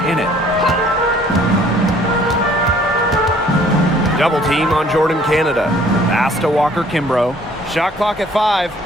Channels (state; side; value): normal; both; correlation 0.57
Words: in it. Double team on Jordan Canada. Pass to Walker-Kimbrough. Shot clock at 5.